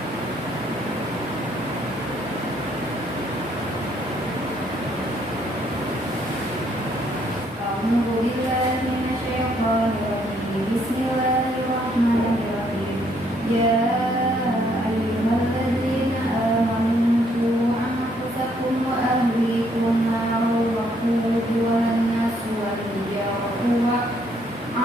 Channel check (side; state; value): both; normal; correlation 0.69